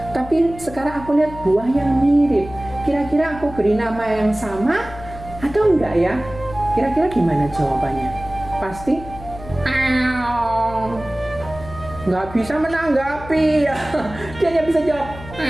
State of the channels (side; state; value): left; noise; hum, 15 dB below the sound